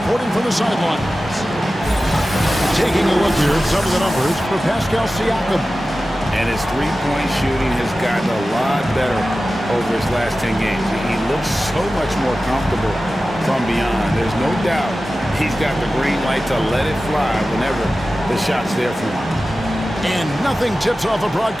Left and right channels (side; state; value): both; normal; correlation 0.95